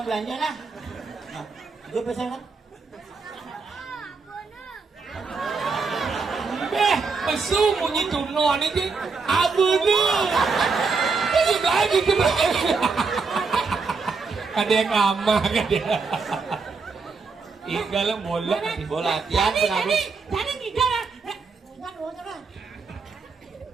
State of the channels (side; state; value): left; quieter; 4.6 dB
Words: belanja lah. Nah, itu pesan kan? Pesu bunyi tunon ini. Abu tu. Ini lagi kena. Ada yang ngambang kan dia. Tinggal bola. Bola latihan pengaruh. Jadi tidak.